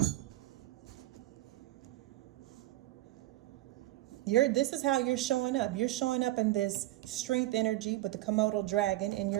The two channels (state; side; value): quieter; left; 17.0 dB